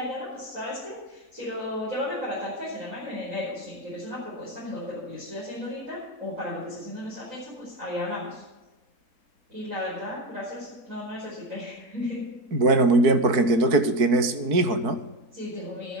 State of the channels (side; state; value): left; late; 4.5 ms